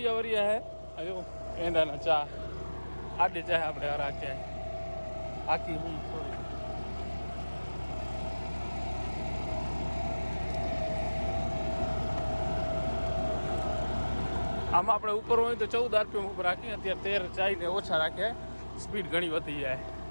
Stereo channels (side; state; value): both; inverted; correlation -1.00